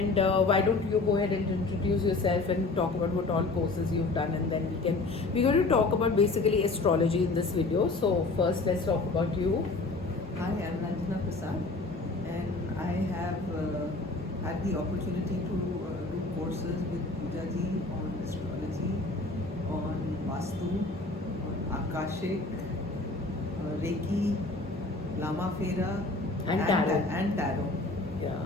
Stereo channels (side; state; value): right; quieter; 3.3 dB